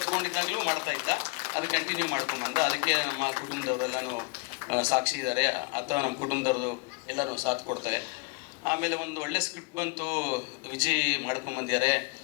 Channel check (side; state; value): right; quieter; 31.0 dB